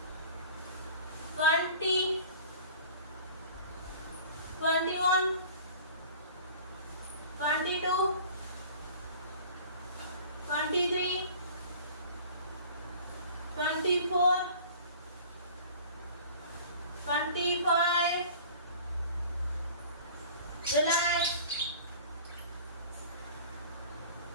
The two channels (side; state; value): both; inverted; correlation -0.44